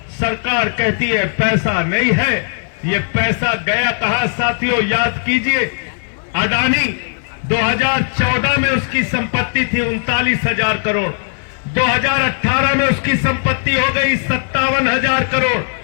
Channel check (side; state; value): right; silent; 59 dB below the other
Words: सरकार कहती है पैसा नहीं है। ये पैसा गया कहां साथियों? याद कीजिए, अडानी 2014 में उसकी संपत्ति थी 39,000 करोड़, 2018 में उसकी संपत्ति हो गई 57,000 करोड़,